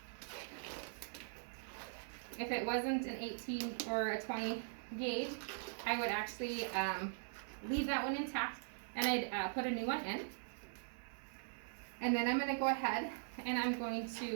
If it wasn't an 18 or a 20 gauge, I would actually leave that one intact, and I'd put a new one in. And then I'm going to go ahead and I'm going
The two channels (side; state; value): left; silent; digital silence